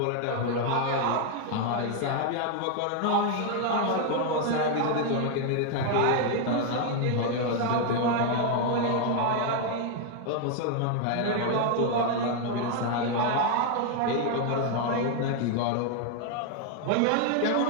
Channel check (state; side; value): different; both; correlation 0.00